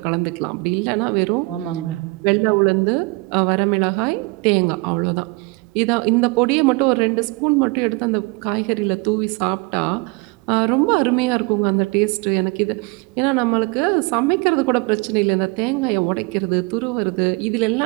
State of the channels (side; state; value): left; quieter; 26.4 dB